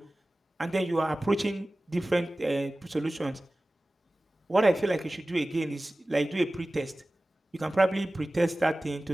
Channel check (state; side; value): normal; both; correlation 0.97